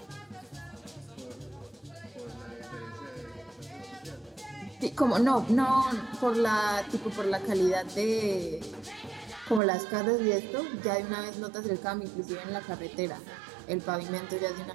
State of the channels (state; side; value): drops out; left; at 9.6 s